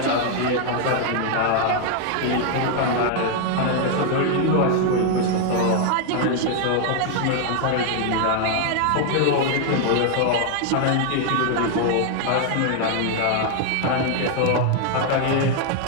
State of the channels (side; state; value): both; different; correlation 0.00